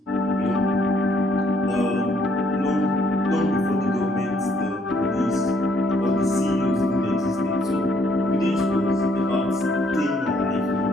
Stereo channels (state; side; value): normal; both; correlation 0.67